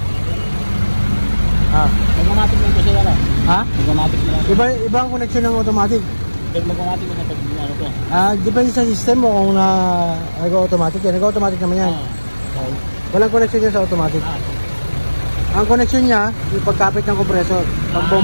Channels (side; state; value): both; inverted; correlation -1.00